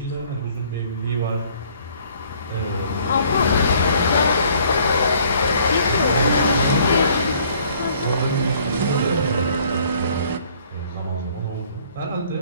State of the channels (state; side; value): inverted; both; correlation -0.59